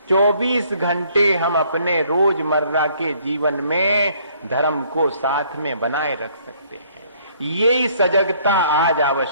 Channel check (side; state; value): both; inverted; correlation -0.63